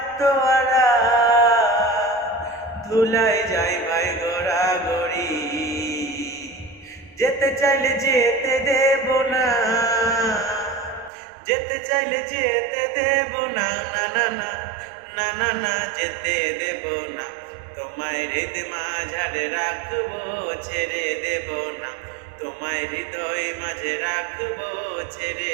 ধুলাই যাই ভাই গোড়া গড়ি, যেতে চাইলে যেতে দেব না। যেতে চাইলে যেতে দেব না। না না না না না না যেতে দেব না, তোমায় হৃদ মাঝারে রাখবো। ছেড়ে দেব না, তোমায় হৃদয় মাঝে রাখবো। ছেড়ে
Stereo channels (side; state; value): left; drops out; at 11.1 s